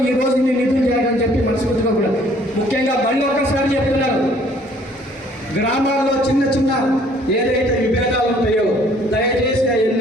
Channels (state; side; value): normal; both; correlation 0.59